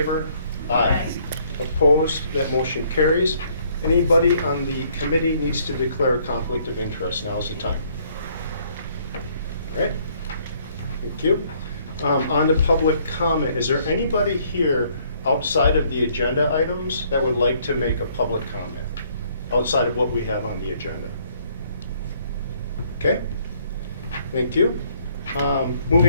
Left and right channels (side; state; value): both; inverted; correlation -0.65